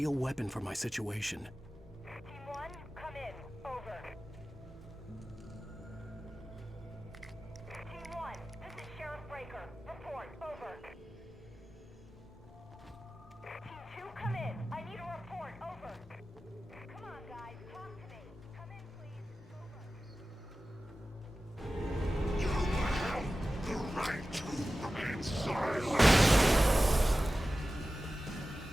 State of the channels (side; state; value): both; normal; correlation 0.95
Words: weapon for my situation. Team 1, come in. Over. Team 1, this is Sheriff Breaker. Report. Over. Team 2, come in. I need a report. Over. Come on, guys. Talk to me. Come in, please. Over. You have the right to remain silent.